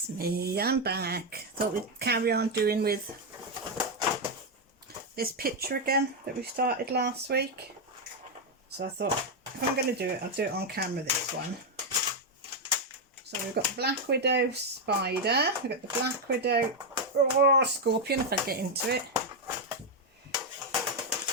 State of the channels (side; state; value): both; normal; correlation 0.03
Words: me, I'm back. Thought we'd carry on doing with this picture again that we started last week. So I thought if I'm going to do it, I'll do it on camera this one. So we've got the Black Widow spider, we've got the Black Widow scorpion if I get into it.